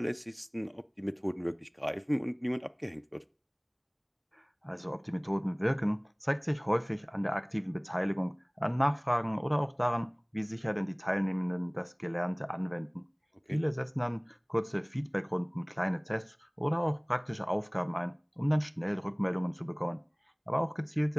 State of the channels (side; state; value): both; identical; correlation 1.00